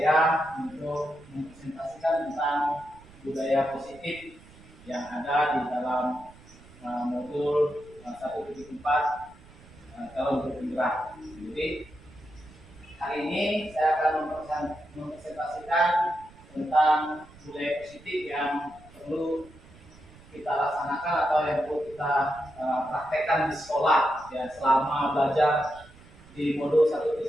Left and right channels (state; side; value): noise; right; rumble, 22 dB below the sound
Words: untuk mempresentasikan tentang budaya positif yang ada di dalam modul 1.4 calon guru penggerak. Jadi hari ini saya akan mempresentasikan tentang budaya positif yang perlu kita laksanakan atau yang perlu kita praktekkan di sekolah ya selama belajar di modul